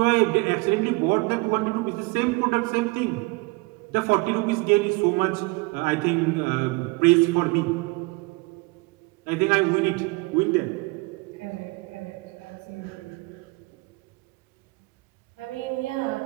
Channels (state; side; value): quieter; left; 25.5 dB